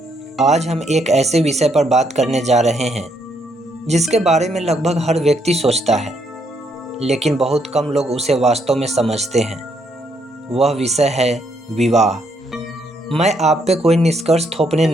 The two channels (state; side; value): normal; both; correlation 0.73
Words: आज हम एक ऐसे विषय पर बात करने जा रहे हैं जिसके बारे में लगभग हर व्यक्ति सोचता है, लेकिन बहुत कम लोग उसे वास्तव में समझते हैं। वह विषय है विवाह। मैं आप पे कोई निष्कर्ष थोपने